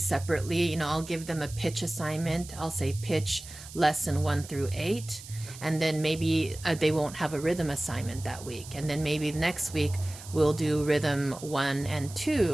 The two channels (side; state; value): right; noise; hiss, 15 dB below the sound